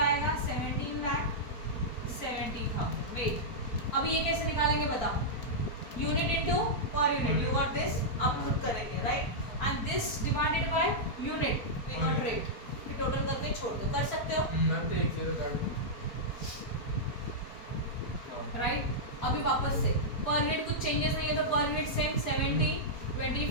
17,70,000। वेट, अब ये कैसे निकालेंगे बताओ, unit into per unit, you got this. अब खुद करेंगे, right. And this divided by unit, we got rate. फिर टोटल करके छोड़ दो, कर सकते हो, राइट। अभी वापस से पर यूनिट कुछ चेंजेस नहीं है, तो पर यूनिट सेम 70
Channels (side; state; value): right; late; 4.4 ms